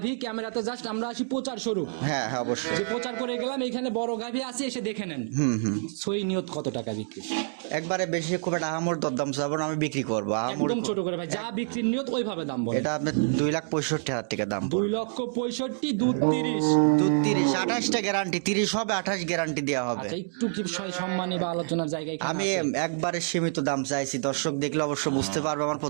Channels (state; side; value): silent; left; digital silence